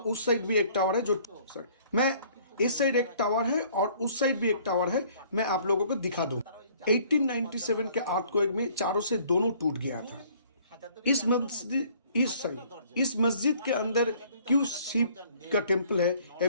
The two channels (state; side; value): inverted; both; correlation -0.57